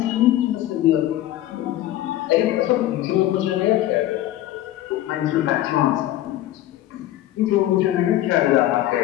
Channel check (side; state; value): right; quieter; 14.1 dB